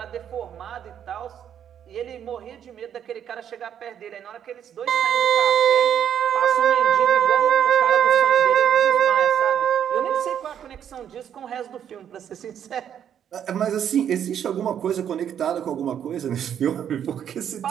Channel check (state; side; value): quieter; left; 9.2 dB